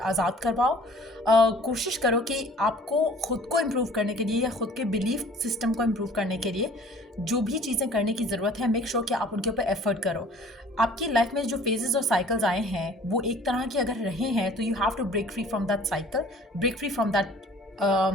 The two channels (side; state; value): both; normal; correlation 0.51